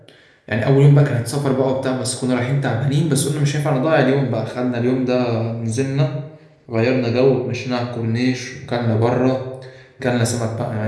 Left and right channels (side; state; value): both; identical; correlation 1.00